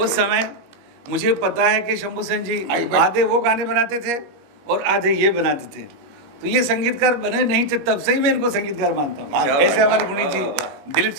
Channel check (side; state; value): left; late; 21 ms